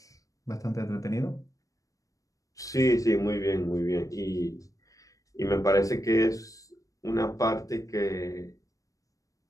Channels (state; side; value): late; right; 0.16 ms